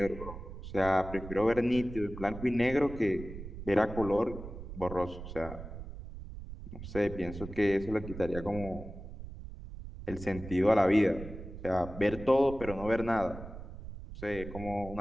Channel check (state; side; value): noise; right; rumble, 11 dB below the sound